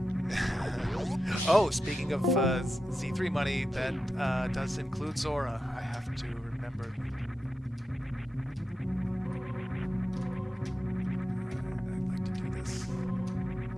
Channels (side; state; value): both; normal; correlation 0.90